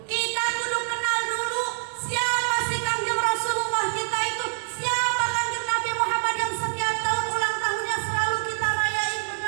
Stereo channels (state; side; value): silent; left; 61 dB below the other